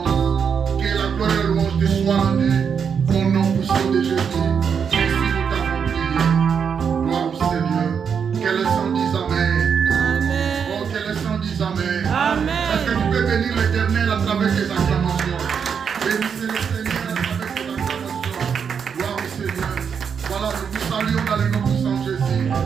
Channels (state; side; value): quieter; left; 6.9 dB